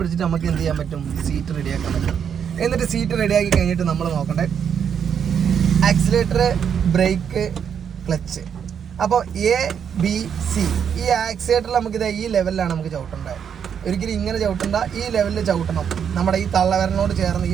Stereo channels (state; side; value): quieter; left; 7.8 dB